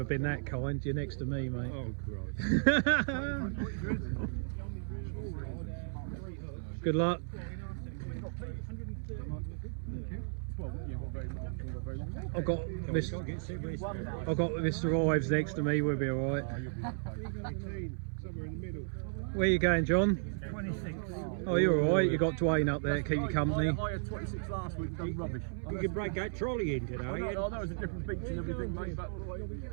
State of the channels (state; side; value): silent; left; 55 dB below the other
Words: been that kind. You're next to me, mate. Oh, Christ. Good luck. I've got Mr. Ives next to me. We'll be all right. Where are you going, John? 26. Oh, you're all right. You got Dwayne up there to keep you company. I had 26 last week, done rubbish. You can break that trolley in today. I know it's a different beach and everything, mate, but